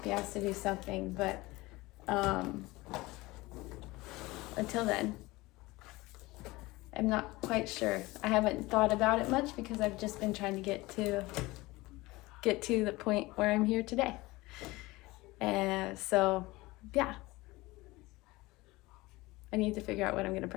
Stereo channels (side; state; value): right; quieter; 20.9 dB